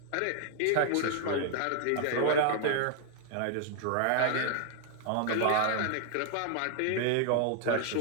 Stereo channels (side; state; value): both; different; correlation 0.00